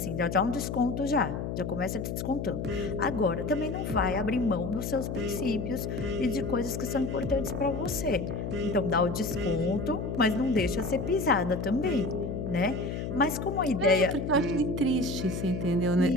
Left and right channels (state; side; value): noise; left; hum, 4 dB below the sound